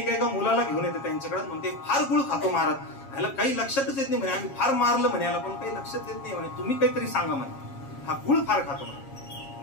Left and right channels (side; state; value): right; late; 7.4 ms